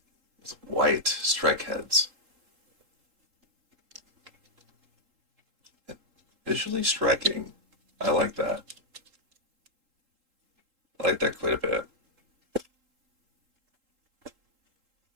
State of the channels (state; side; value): late; left; 3.8 ms